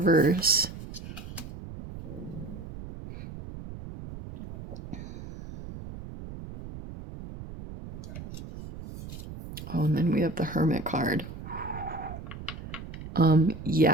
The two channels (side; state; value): right; noise; rumble, 11 dB below the sound